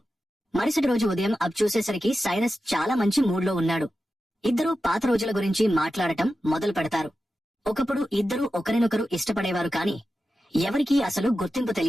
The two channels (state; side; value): normal; both; correlation 0.92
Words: మరుసటి రోజు ఉదయం అబ్ చూసేసరికి సైరస్ చాలా మంచి మూడ్లో ఉన్నాడు. ఇద్దరూ పాత రోజుల గురించి మాట్లాడటం మొదలు పెడతారు. ఒకప్పుడు ఇద్దరూ ఒకరినొకరు ఇష్టపడేవారు కాని ఎవరికీ అసలు గుర్తింపు